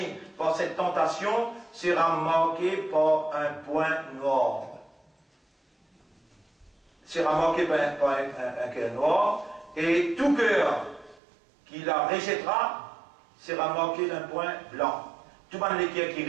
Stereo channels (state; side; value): drops out; left; at 11.2 s